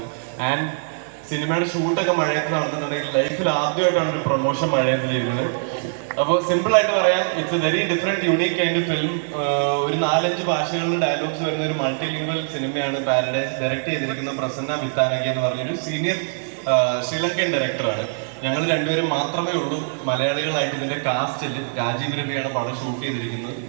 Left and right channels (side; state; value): left; silent; digital silence